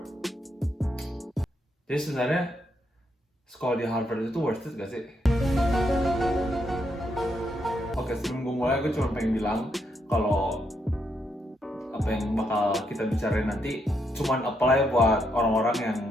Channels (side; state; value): both; normal; correlation 0.78